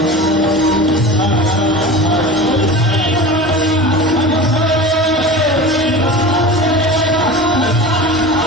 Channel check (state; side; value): normal; both; correlation 0.33